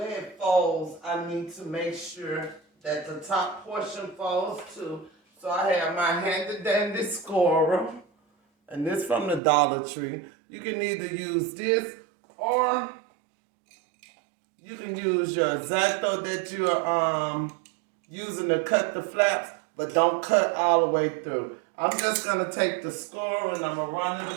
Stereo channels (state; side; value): drops out; left; at 9.4 s